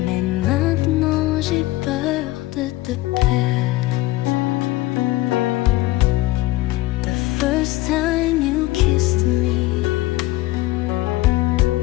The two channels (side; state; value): right; quieter; 18.0 dB